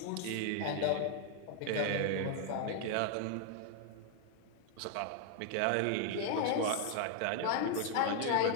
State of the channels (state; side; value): different; both; correlation 0.00